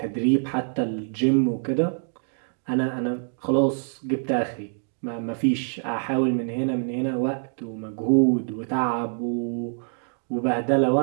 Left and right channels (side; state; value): left; silent; digital silence